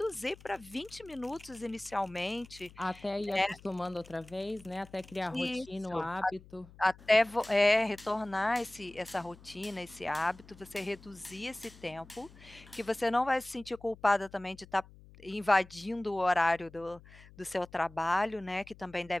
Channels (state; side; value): noise; left; hum, 21 dB below the sound